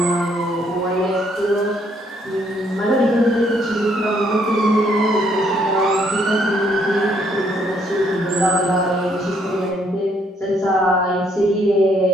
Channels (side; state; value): both; normal; correlation 0.69